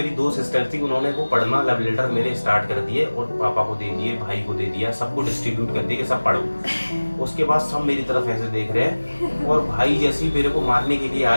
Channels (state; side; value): inverted; both; correlation -1.00